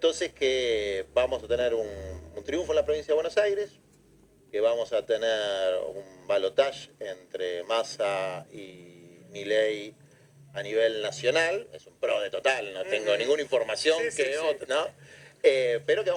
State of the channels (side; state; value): both; identical; correlation 1.00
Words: que vamos a tener un triunfo en la provincia de Buenos Aires, que vamos a tener un balotaje entre Massa y Milei a nivel nacional, es un pro de total, no tengo ninguna información ¿no? Pero que